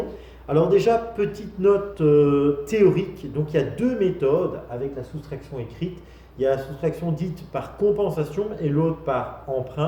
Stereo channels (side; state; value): both; identical; correlation 1.00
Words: Alors déjà, petite note théorique, donc il y a deux méthodes avec la soustraction écrite. Il y a la soustraction dite par compensation et l'autre par